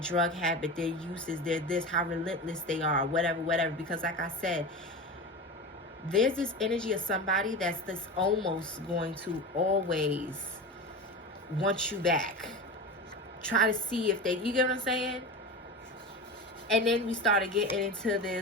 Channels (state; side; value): normal; both; correlation 0.27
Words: habit, their uses, their this, how relentless they are, whatever. Because like I said, there's this energy of somebody that's this almost going to always want you back. Try to see if they, you get what I'm saying? And then we started getting into